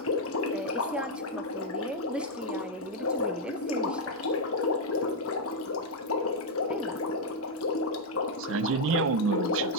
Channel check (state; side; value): normal; both; correlation -0.02